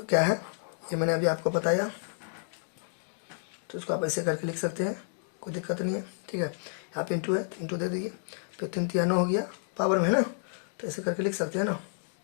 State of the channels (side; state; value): right; silent; digital silence